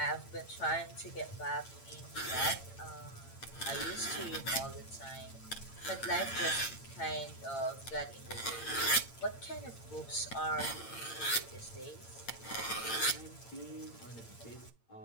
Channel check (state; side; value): late; right; 8.8 ms